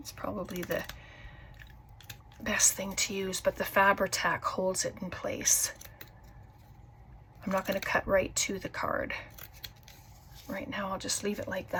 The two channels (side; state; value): both; identical; correlation 1.00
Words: probably the best thing to use, but the Fabri-Tac holds it in place. I'm not going to cut right to the card. Right now I'll just leave it like